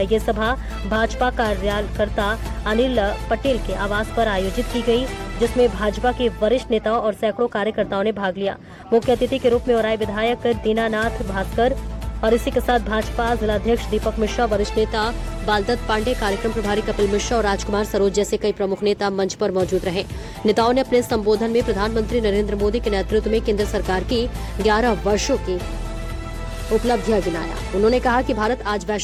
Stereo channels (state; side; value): identical; both; correlation 1.00